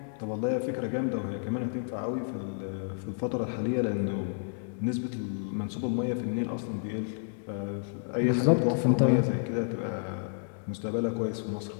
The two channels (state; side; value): silent; right; digital silence